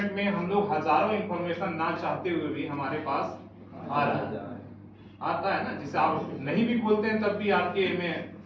में हम लोग हजारों इंफॉर्मेशन ना चाहते हुए भी हमारे पास आ रहा है, आता है ना, जिसे आप नहीं भी खोलते हैं तब भी आपके में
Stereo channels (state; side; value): identical; both; correlation 1.00